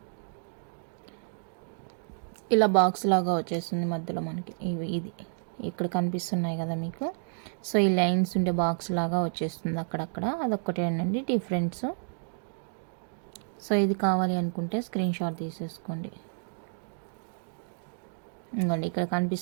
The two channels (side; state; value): left; silent; digital silence